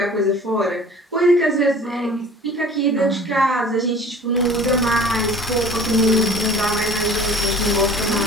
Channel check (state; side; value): normal; both; correlation 0.46